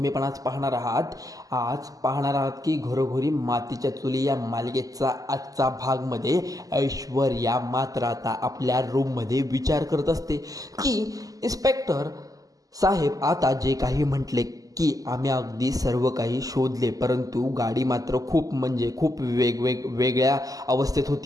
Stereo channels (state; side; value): late; left; 0.17 ms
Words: पण आज पाहणार आहात की घरोघरी मातीच्या चुली या मालिकेचा आजचा भागमध्ये ऐश्वर्या मात्र आता आपल्या रूममध्ये विचार करत असते की इन्स्पेक्टर साहेब आता जे काही म्हटले की आम्ही अगदी सर्व काही शोधले, परंतु गाडी मात्र खूप वेगळ्या अवस्थेत